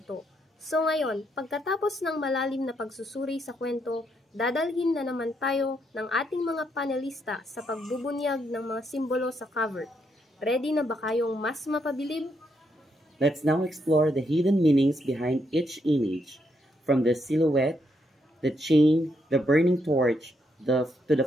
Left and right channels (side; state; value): both; normal; correlation 0.77